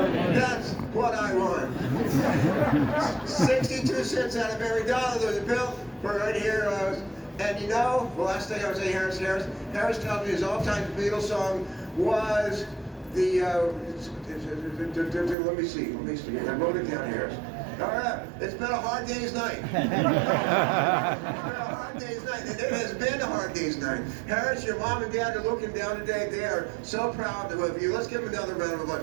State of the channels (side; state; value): left; drops out; at 15.4 s